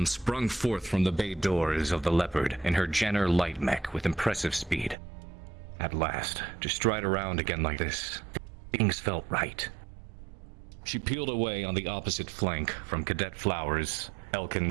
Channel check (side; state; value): left; drops out; at 5.0 s